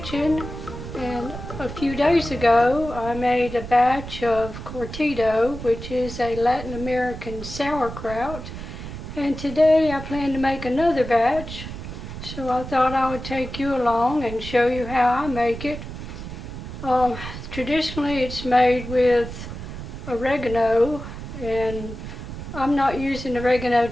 and a few days ago I made a batch of Cortido, which is a Latin American sauerkraut, and today I plan to make another batch, so I thought I would take you along and show you how I make it. Traditionally it's made with oregano, and I'm not using oregano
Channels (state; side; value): noise; right; rumble, 9 dB below the sound